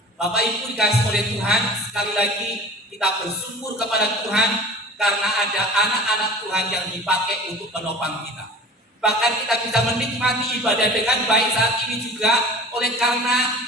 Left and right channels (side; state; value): both; normal; correlation 0.40